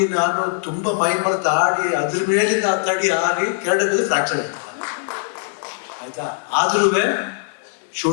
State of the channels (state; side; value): silent; right; digital silence